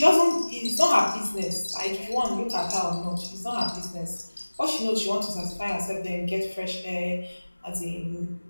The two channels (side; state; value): both; inverted; correlation -1.00